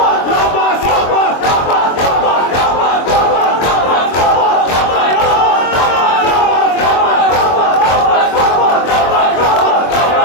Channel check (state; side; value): late; right; 23 ms